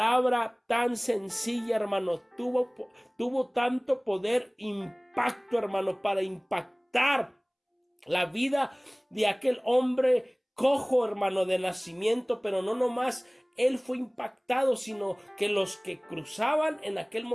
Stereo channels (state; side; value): identical; both; correlation 1.00